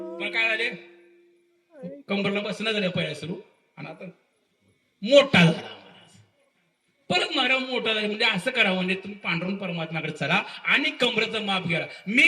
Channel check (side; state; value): both; identical; correlation 1.00